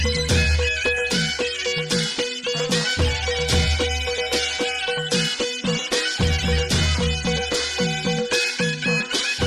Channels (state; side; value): identical; both; correlation 1.00